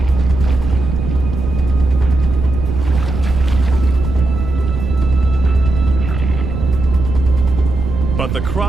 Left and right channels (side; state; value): right; noise; rumble, 5 dB below the sound